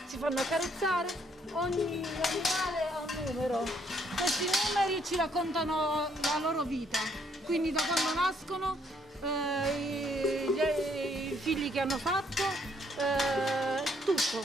si fanno accarezzare, ogni animale ha un numero. questi numeri ci raccontano la loro vita, quindi da quando nascono, i figli che hanno fatto, tutto.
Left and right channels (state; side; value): normal; both; correlation 0.68